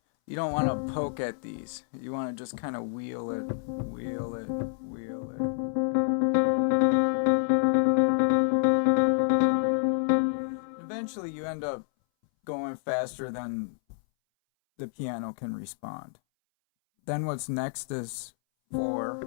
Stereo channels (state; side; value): silent; right; 59 dB below the other